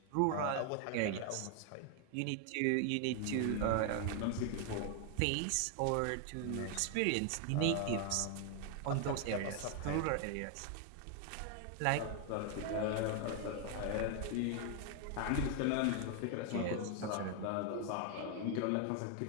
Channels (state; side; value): different; both; correlation 0.01